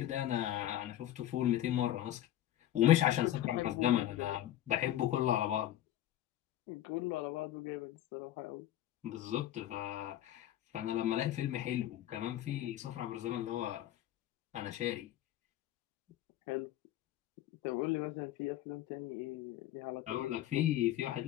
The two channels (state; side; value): quieter; right; 12.8 dB